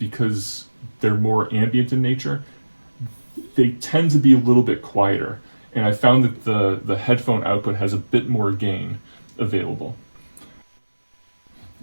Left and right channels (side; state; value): both; inverted; correlation -1.00